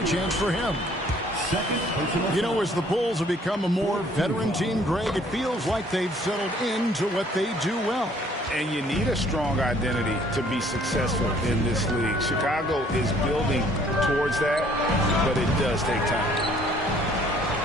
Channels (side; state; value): both; normal; correlation 0.59